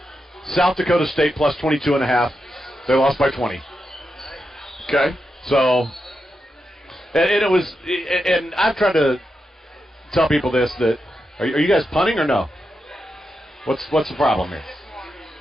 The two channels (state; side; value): normal; both; correlation 0.87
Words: South Dakota State plus 22.5. They lost by 20. Okay. So, and it was, and I've tried to tell people this, that, are you guys punting or no? What's the problem here?